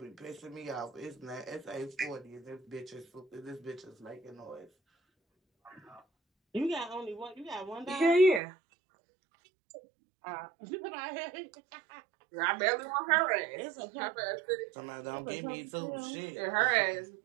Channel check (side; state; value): left; drops out; at 8.4 s